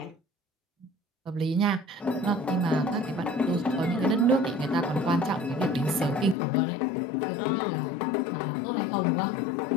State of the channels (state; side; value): drops out; right; at 6.4 s